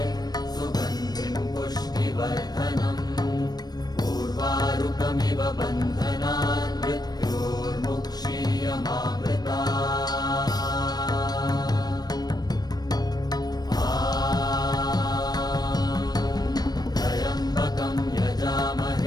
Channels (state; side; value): late; right; 0.19 ms